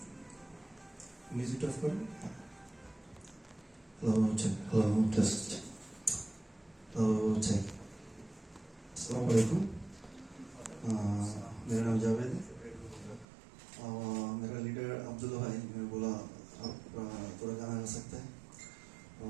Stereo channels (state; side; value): drops out; left; at 13.2 s